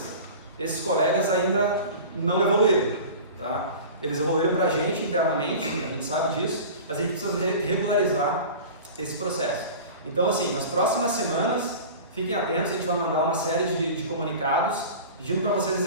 esses colegas ainda não evoluíram. Tá? Eles evoluíram para a gente internamente, a gente sabe disso, mas a gente precisa regularizar esse processo. Então, assim, nas próximas semanas, fiquem atentos, a gente vai mandar uma série de comunicados pedindo para vocês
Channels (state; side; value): inverted; both; correlation -0.36